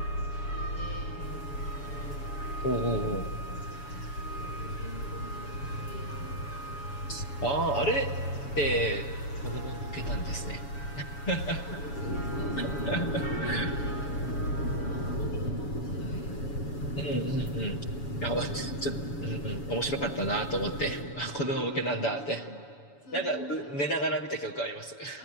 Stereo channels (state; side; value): late; right; 7.1 ms